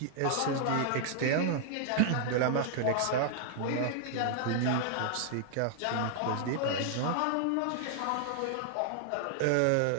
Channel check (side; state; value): both; different; correlation 0.00